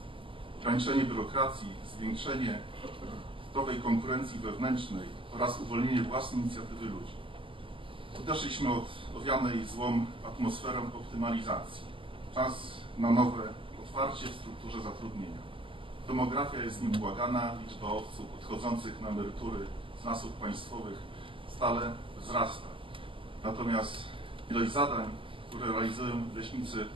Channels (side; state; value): left; late; 0.25 ms